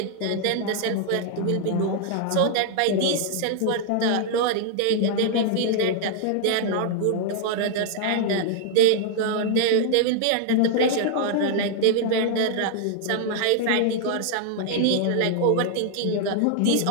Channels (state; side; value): different; both; correlation -0.01